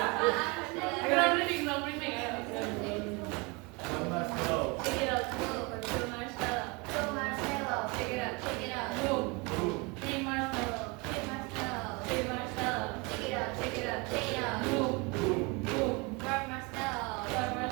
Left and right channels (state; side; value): quieter; left; 28.1 dB